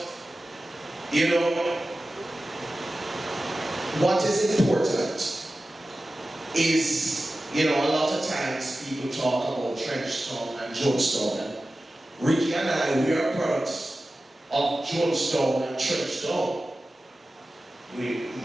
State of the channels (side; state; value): both; normal; correlation 0.95